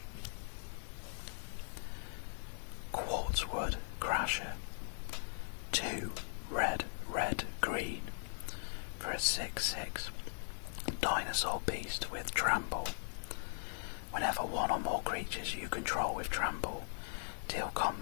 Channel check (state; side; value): silent; right; digital silence